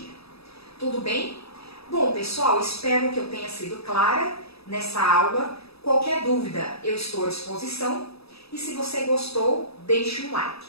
Tudo bem? Bom, pessoal, espero que eu tenha sido clara nessa aula. Qualquer dúvida, eu estou à disposição. E se você gostou, deixe um like.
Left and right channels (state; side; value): late; right; 0.78 ms